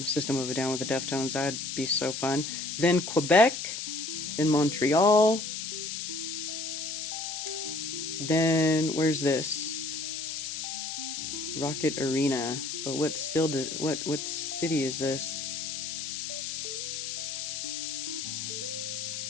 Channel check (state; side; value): noise; left; hiss, 5 dB below the sound